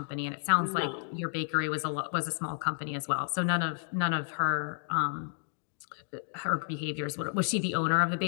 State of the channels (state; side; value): silent; right; 57 dB below the other